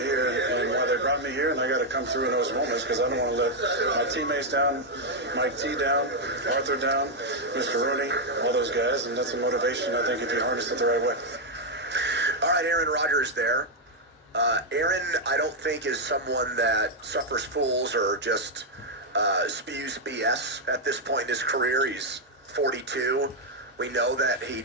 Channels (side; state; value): both; normal; correlation 0.00